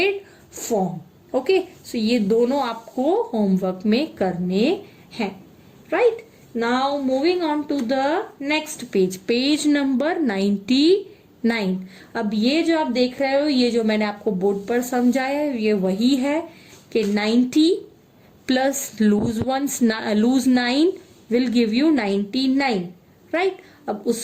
form. Okay, so ये दोनों आपको homework में करने हैं. Right? Now moving on to the next page, page number 99. अब ये जो आप देख रहे हो, ये जो मैंने आपको बोर्ड पर समझाया है, ये वही है कि 90 plus lose 9 will give you 99. Right? अब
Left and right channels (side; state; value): both; identical; correlation 1.00